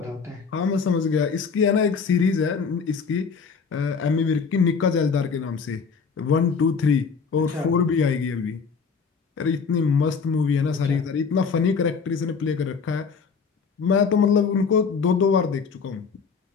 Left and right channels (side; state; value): right; quieter; 5.5 dB